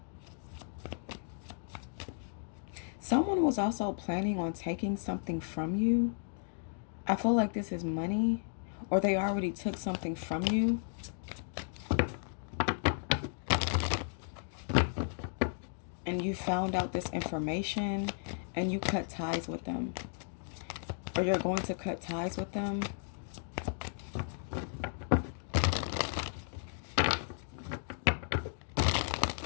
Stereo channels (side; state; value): right; silent; digital silence